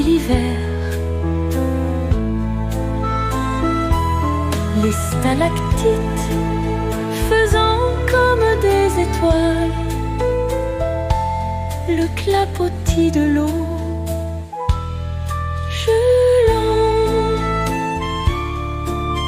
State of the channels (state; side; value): identical; both; correlation 1.00